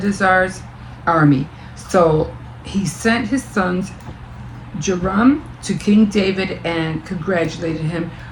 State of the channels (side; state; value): both; identical; correlation 1.00